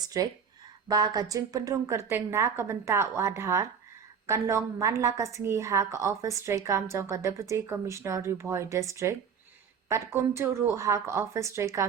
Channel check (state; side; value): quieter; left; 6.7 dB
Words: Ba ka Jingpendrung Kerteng na kabenta Wadhar, Kanlong Manla Kasingi ha ka Office Trekam Jongka Deputy Commissioner Boy District, Pat Kumtu Ru ha ka Office